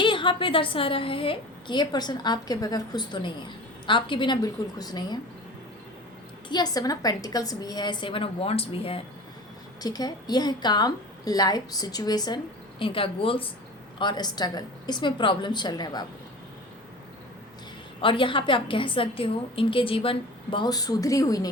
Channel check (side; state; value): both; normal; correlation 0.37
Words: यहाँ पे दर्शा रहा है कि ये पर्सन आपके बगैर खुश तो नहीं है, आपके बिना बिल्कुल खुश नहीं है। यह 7 ऑफ पेंटिकल्स भी है, 7 ऑफ वॉन्ड्स भी है, ठीक है। यह है काम, लाइफ सिचुएशन, इनका गोल्स और स्ट्रगल, इसमें प्रॉब्लम चल रहे हैं बाबू। और यहाँ पे आप कह सकते हो इनके जीवन बहुत सुधरी हुई